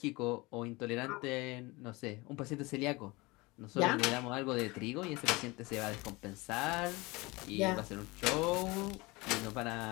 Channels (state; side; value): quieter; right; 23.6 dB